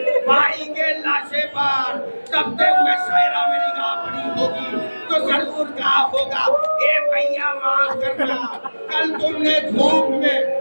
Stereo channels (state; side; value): inverted; both; correlation -1.00